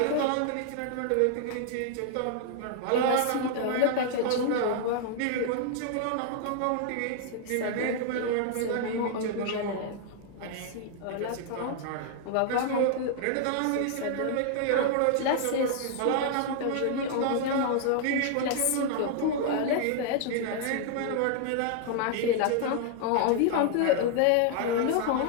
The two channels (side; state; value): both; different; correlation 0.00